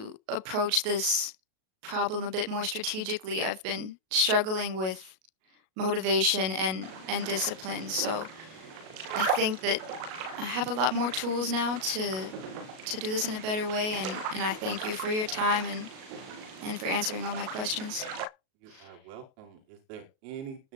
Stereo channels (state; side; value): late; left; 37 ms